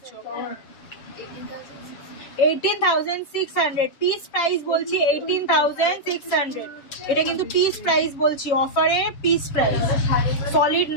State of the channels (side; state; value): right; late; 7.9 ms